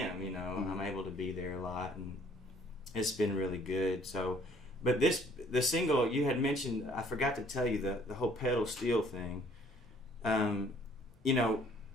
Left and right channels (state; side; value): normal; both; correlation 0.59